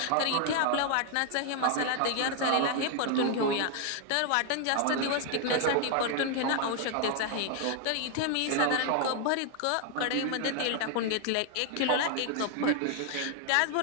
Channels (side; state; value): both; different; correlation 0.00